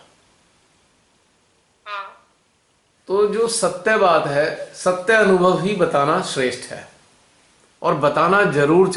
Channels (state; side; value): identical; both; correlation 1.00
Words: तो जो सत्य बात है, सत्य अनुभव ही बताना श्रेष्ठ है और बताना जरूर